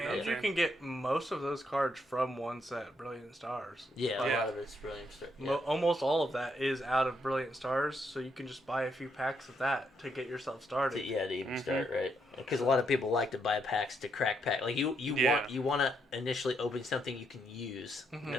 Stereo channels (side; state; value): both; normal; correlation 0.76